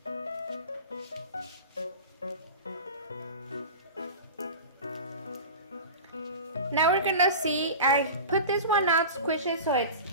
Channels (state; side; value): inverted; both; correlation -0.32